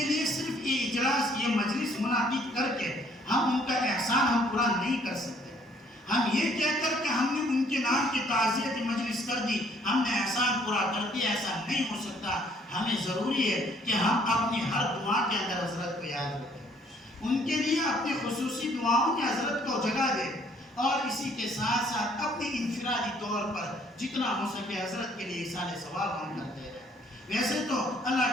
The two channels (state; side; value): normal; both; correlation 0.63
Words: لیے صرف یہ اجلاس، یہ مجلس منعقد کر کے ہم ان کا احسان ہم پورا نہیں کر سکتے۔ ہم یہ کہہ کر کہ ہم نے ان کے نام کی تعزیت مجلس کر دی، ہم نے احسان پورا کر دیا، ایسا نہیں ہو سکتا۔ ہمیں ضروری ہے کہ ہم اپنی ہر دعا کے اندر حضرت کو یاد رکھیں، ان کے لیے اپنی خصوصی دعاؤں میں حضرت کو جگہ دیں، اور اسی کے ساتھ ساتھ اپنی انفرادی طور پر جتنا ہو سکے حضرت کے لیے اِیصال ثواب ہم کرتے رہیں۔ ویسے تو اللہ